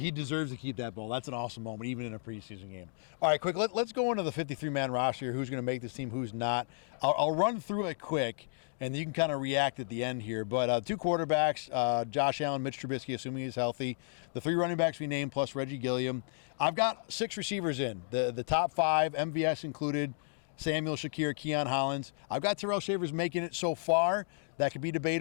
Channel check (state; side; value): silent; right; digital silence